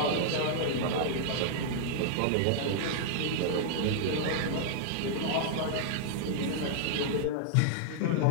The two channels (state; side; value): different; both; correlation -0.01